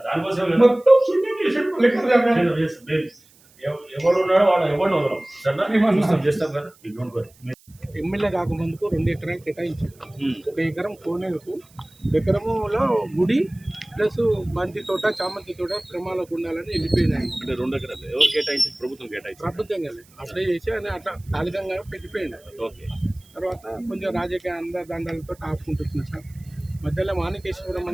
మొత్తం శూన్యం చేసాడు ఎవడు ఉన్నాడో వాడు ఎవరిని వదలం సరే చేస్తాం కదా. ఎమ్మెల్యే కాకముందుకు 2 ఎకరాలు కేటాయించారు. 1 ఎకరం కోనేరుకు, ఎకరములో గుడి ప్లస్ బంతి తోట, చామంతి తోట క్రమాలకు ఉండాలని వెళ్ళిపోయినాయి. అంటే 2 ఎకరాలు ఎవరు కేటాయించి? ప్రభుత్వం కేటాయించి. ప్రభుత్వం కదా అప్లై చేసి అని అట్లా తాలికంగా పెట్టిపోయింది. ఓకే. తర్వాత కొంచెం రాజకీయ అందదండాలతో ఆపుకుంటున్నారు సార్. మధ్యలో మాణికేశ్వరం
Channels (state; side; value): noise; right; hiss, 28 dB below the sound